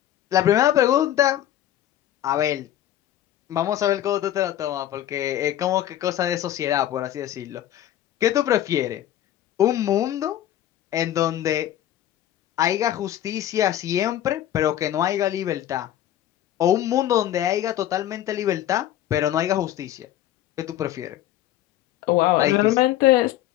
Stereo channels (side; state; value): right; quieter; 12.4 dB